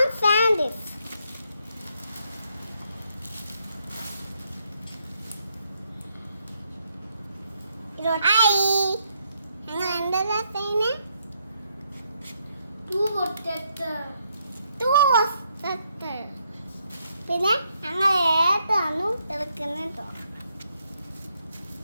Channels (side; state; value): both; inverted; correlation -0.75